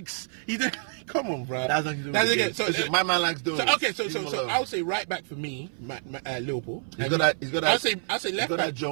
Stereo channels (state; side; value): silent; left; 58 dB below the other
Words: Come on, bro. That's nothing to do with the game. So, Listen, my man likes doing so I'll say right back for me, Liverpool. He's got that. I'll say left He's got back. that